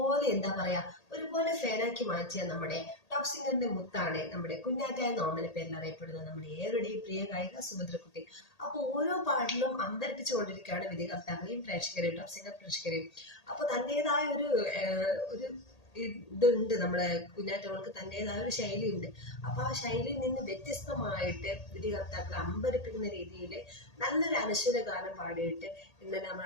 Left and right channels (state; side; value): late; right; 1.8 ms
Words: ഒരുപോലെ ഫാനാക്കി മാറ്റിയ നമ്മുടെ ടോപ്പ് സിംഗറിന്റെ മുത്താണ് നമ്മുടെ കുഞ്ഞാറ്റ എന്ന ഓമന പേരിൽ അറിയപ്പെടുന്ന നമ്മുടെ ഏവരുടെയും പ്രിയ ഗായിക സുഭദ്രക്കുട്ടി. അപ്പൊ ഓരോ പാട്ടിലും അമ്പരപ്പിച്ചുകൊണ്ടിരിക്കുകയാണ് വിധികർത്താക്കളെയും പ്രേക്ഷകരെയും ടോപ്പ് സിംഗർ പ്രേക്ഷകരെയും. അപ്പൊ തന്റേതായ ഒരു ഇതുണ്ട്, നമ്മുടെ കുഞ്ഞാറ്റോൾക്ക് തന്റേതായ ഒരു ശൈലി ഉണ്ട്. അപ്പൊ ആ ശൈലിയിൽ നിന്ന് വ്യത്യസ്തമായിട്ട് വിധികർത്താക്കളെ അമ്പരപ്പിക്കുന്ന രീതിയിൽ നല്ലൊരു അനശ്വര ഗാനം പാടിയിട്ട് ഇന്നലെ